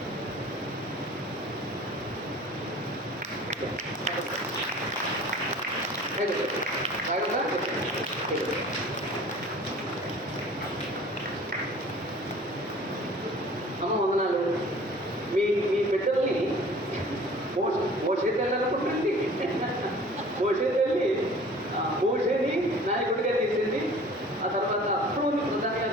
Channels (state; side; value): normal; both; correlation 0.46